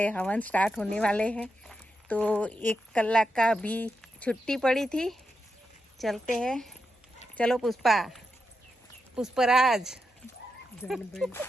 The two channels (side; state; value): both; normal; correlation 0.86